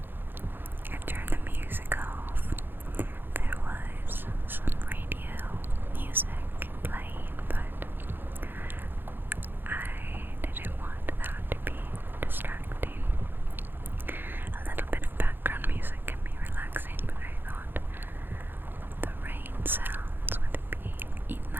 I turned the music off. There was some radio music playing, but I didn't want that to be distracting. A little bit of background music can be relaxing, but I thought the rain sounds would be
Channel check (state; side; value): late; left; 0.098 ms